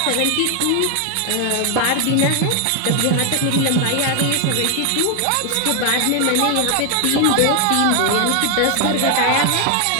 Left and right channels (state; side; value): different; both; correlation 0.00